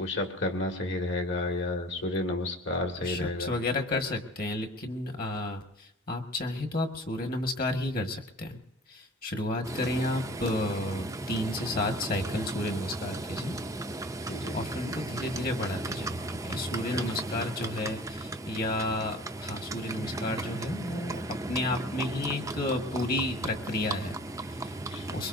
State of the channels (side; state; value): both; normal; correlation 0.44